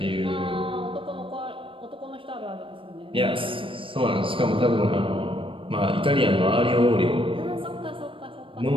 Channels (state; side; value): late; left; 0.25 ms